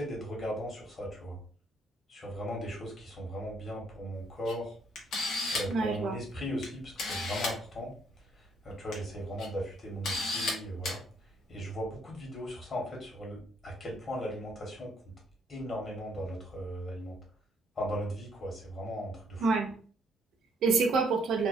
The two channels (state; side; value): normal; both; correlation 0.68